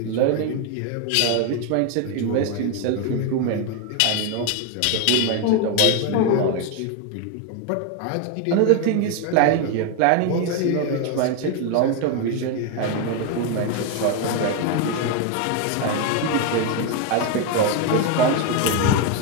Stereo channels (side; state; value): both; different; correlation 0.02